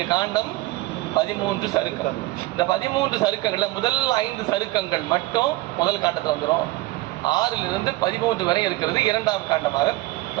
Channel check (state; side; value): quieter; left; 19.2 dB